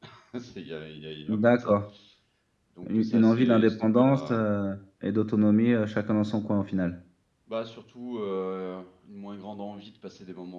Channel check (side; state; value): both; identical; correlation 1.00